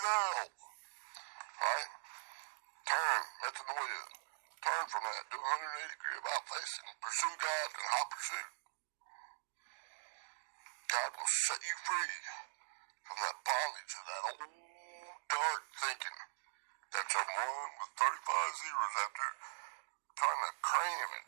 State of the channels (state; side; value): silent; left; digital silence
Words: out. Right? Turn. Metanoia. Turn from that. Do 180 degree about facing. Pursue God in hot pursuit. God will set you free from that bondage of that old dark thinking. That's a one with 35 zeros after trying to cram it.